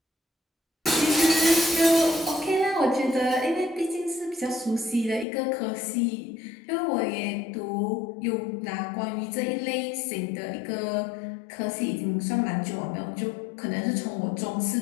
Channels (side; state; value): right; drops out; at 5.2 s